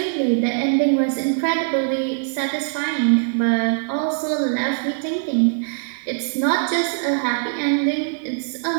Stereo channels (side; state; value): left; silent; digital silence